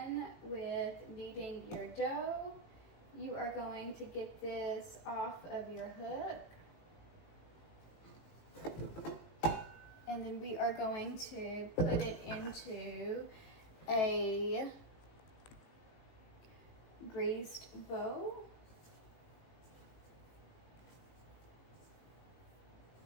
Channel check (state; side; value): late; right; 18 ms